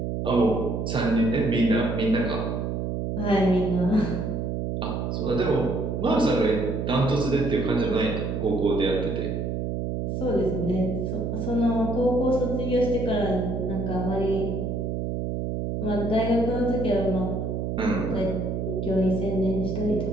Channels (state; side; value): noise; right; hum, 2 dB below the sound